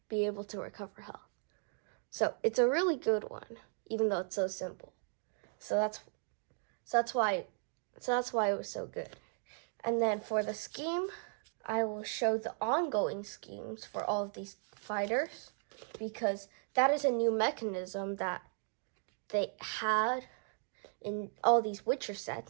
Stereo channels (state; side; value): silent; left; 53 dB below the other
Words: be able to recover health. So it's a really good one, even though it's so simple. So that's why it was so good. And then for the scheme, I will show the ongoing schemes for all of these fighters, because that is a new mechanism that they had in all these Witcher